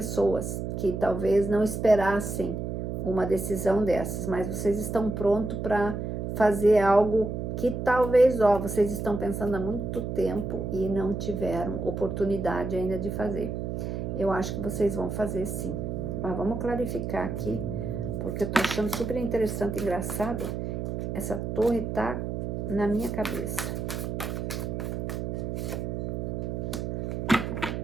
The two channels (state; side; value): noise; right; hum, 3 dB below the sound